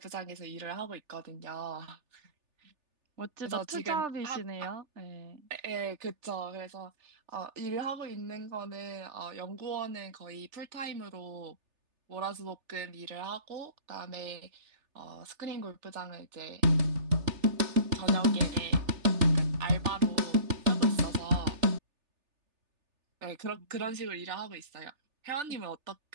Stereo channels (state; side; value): late; left; 3.4 ms